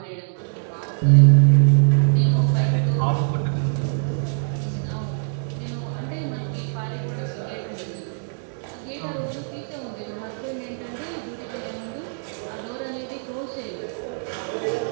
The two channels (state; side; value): silent; left; 63 dB below the other